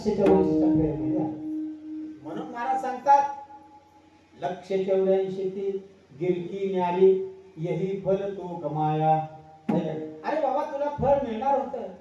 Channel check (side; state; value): both; identical; correlation 1.00